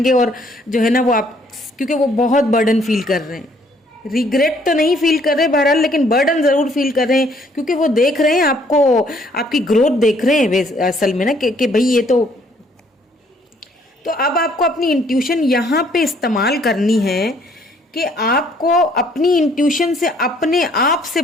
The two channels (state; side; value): normal; both; correlation 0.64